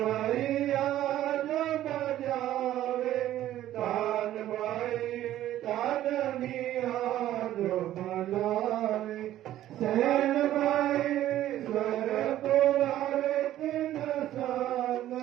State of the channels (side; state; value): left; quieter; 13.1 dB